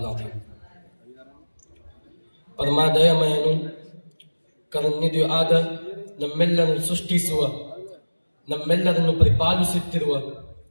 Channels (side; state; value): both; inverted; correlation -1.00